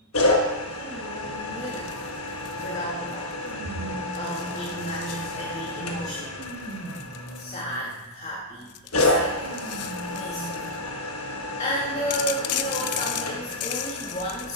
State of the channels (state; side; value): normal; both; correlation -0.10